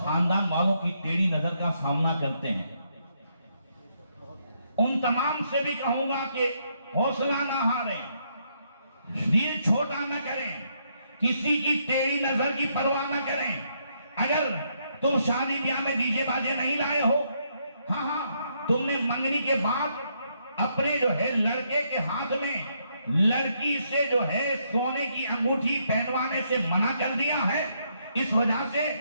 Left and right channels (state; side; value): inverted; both; correlation -0.75